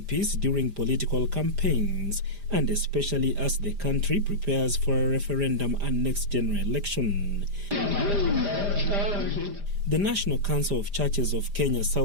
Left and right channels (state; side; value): late; left; 5.0 ms